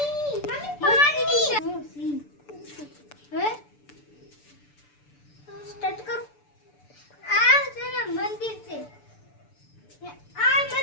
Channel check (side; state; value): right; late; 6.9 ms